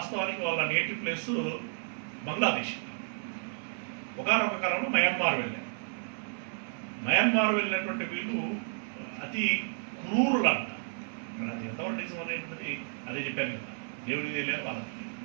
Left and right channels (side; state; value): left; silent; 57 dB below the other